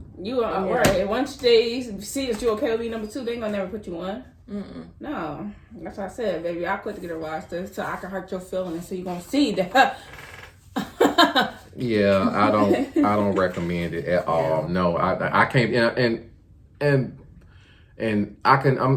You are right. Once they see that you're okay with being number 2, they ain't gonna never put you on. No, that's what I said, baby. I quit to get a roster so I can hurt your feelings. So you gonna see that. Yeah, I don't recommend it at all. No, I can't. And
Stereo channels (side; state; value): both; identical; correlation 1.00